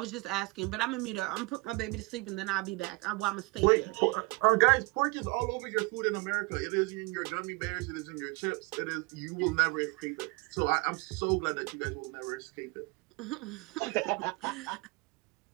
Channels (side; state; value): left; quieter; 26.6 dB